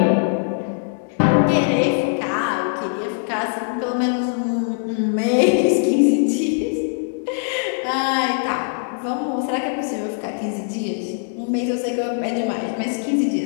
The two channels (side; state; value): right; silent; digital silence